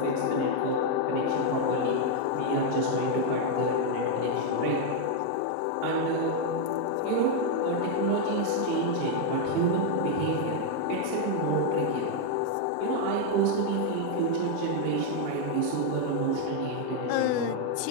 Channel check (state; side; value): different; both; correlation 0.00